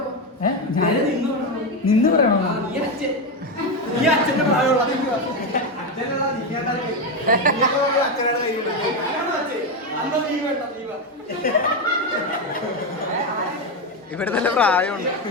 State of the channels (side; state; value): both; normal; correlation 0.10